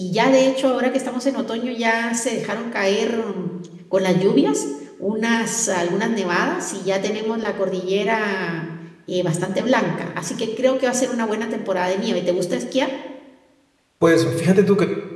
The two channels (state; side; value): identical; both; correlation 1.00